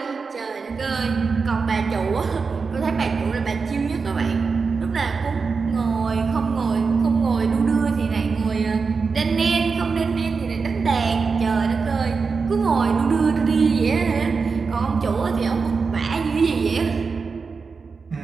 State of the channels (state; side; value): quieter; left; 4.9 dB